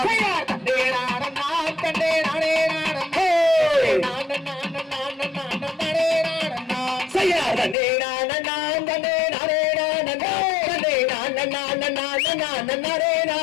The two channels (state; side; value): drops out; right; at 7.8 s